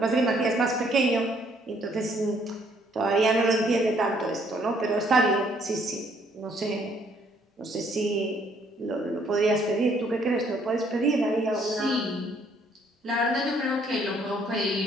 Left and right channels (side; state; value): both; normal; correlation 0.66